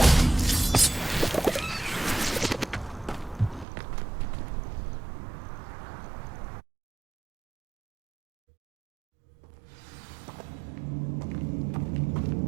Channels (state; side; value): drops out; left; at 3.7 s